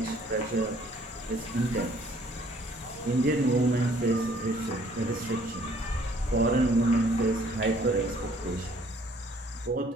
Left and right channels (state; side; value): normal; both; correlation 0.60